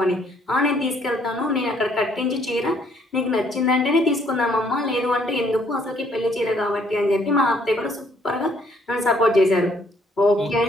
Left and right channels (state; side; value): normal; both; correlation 0.65